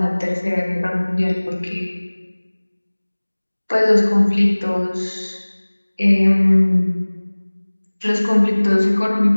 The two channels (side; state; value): both; inverted; correlation -1.00